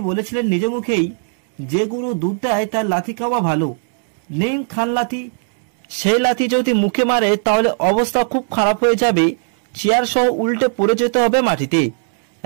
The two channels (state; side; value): silent; left; digital silence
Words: বলেছিলেন নিজ মুখেই, যে গরু দুধ দেয় তার লাথি খাওয়া ভালো, নেই খান লাথি। সেই লাথি যদি মুখে মারে তাহলে অবস্থা খুব খারাপ হয়ে যাবে, চেয়ার সহ উল্টে পড়ে যেতে হবে মাটিতে।